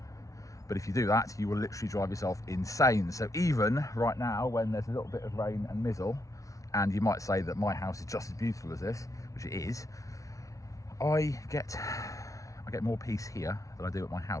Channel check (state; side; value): late; right; 0.16 ms